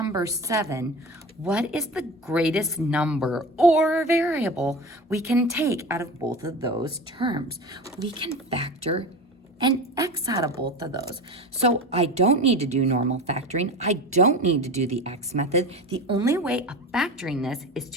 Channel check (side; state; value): both; normal; correlation 0.31